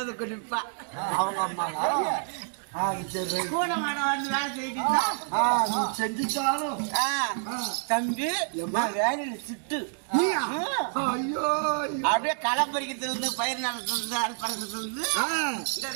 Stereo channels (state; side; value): silent; left; 56 dB below the other